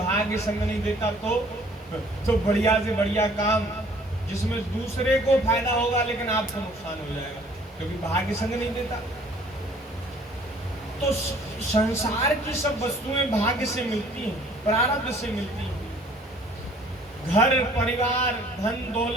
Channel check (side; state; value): both; normal; correlation 0.56